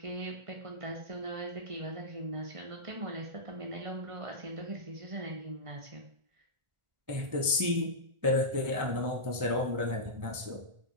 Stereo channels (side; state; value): left; late; 1.4 ms